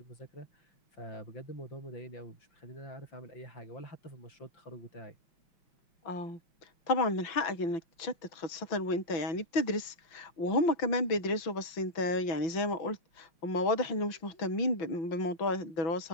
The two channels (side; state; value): right; late; 6.0 ms